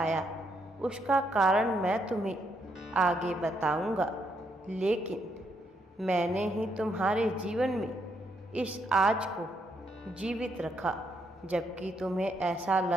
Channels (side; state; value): both; normal; correlation 0.76